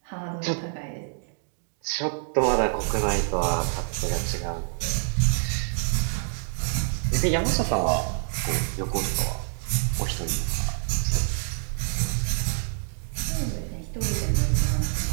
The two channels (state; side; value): silent; left; digital silence